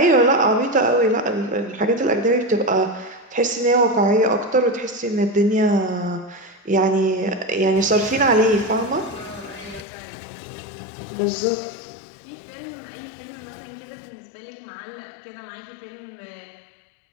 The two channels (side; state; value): right; drops out; at 9.9 s